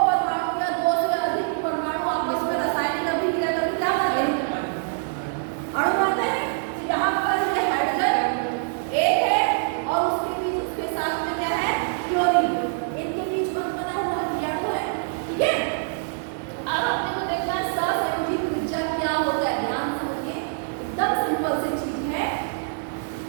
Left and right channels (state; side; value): silent; left; 62 dB below the other